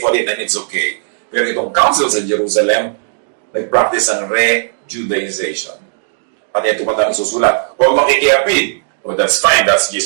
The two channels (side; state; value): left; silent; digital silence